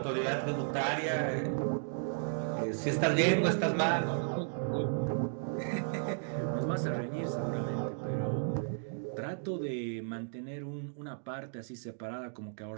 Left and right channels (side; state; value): left; silent; digital silence